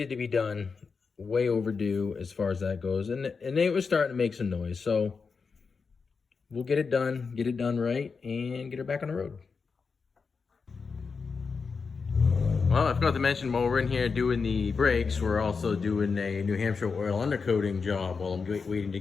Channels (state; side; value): quieter; right; 5.1 dB